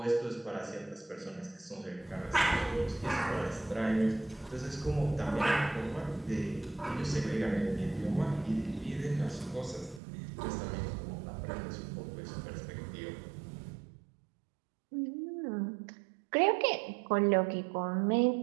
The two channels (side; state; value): left; drops out; at 10.0 s